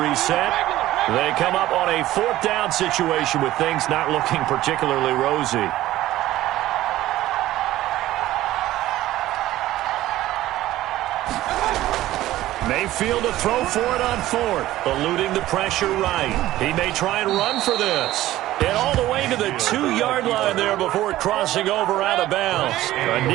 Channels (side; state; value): left; quieter; 15.2 dB